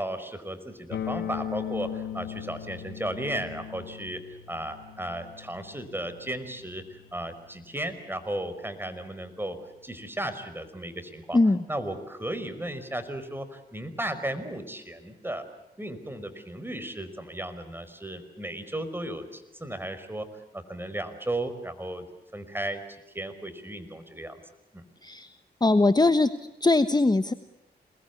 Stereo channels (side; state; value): both; normal; correlation 0.79